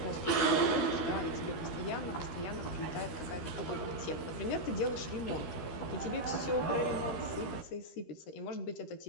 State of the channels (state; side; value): late; right; 13 ms